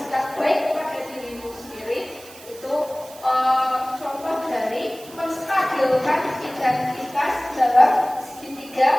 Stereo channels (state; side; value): noise; right; hiss, 19 dB below the sound